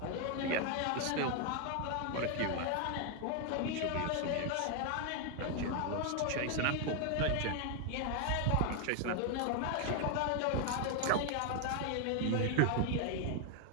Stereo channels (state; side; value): different; both; correlation 0.00